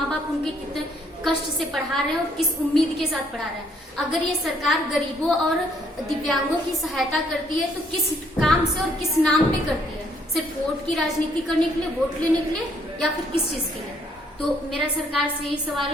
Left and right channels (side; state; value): both; normal; correlation 0.67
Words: बाप उनके कितने कष्ट से पढ़ा रहे हैं और किस उम्मीद के साथ पढ़ा रहे हैं। अगर ये सरकार गरीबों और दिव्यांगों की सहायता करती है तो किस काम से और किस नाम पे करती है? सिर्फ वोट की राजनीति करने के लिए, वोट लेने के लिए, या फिर किस चीज के लिए? तो मेरा सरकार से यही